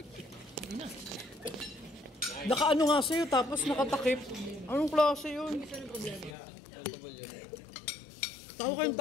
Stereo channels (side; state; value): right; drops out; at 6.4 s